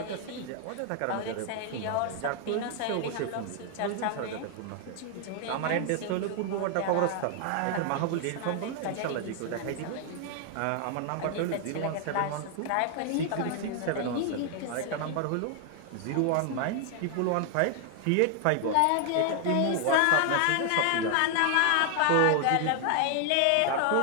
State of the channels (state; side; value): different; both; correlation 0.00